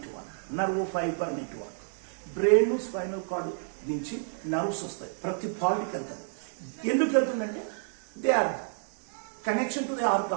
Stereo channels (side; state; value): left; silent; digital silence